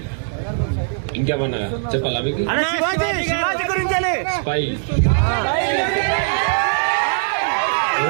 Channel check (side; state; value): left; silent; 59 dB below the other